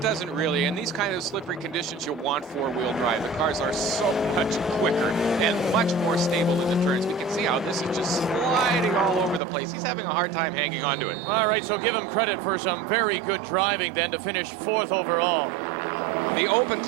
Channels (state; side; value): drops out; left; at 9.4 s